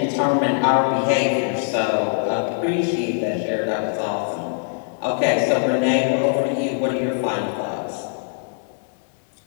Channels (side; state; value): right; silent; digital silence